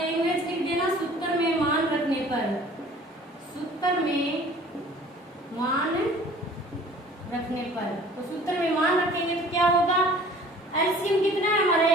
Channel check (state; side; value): normal; both; correlation 0.49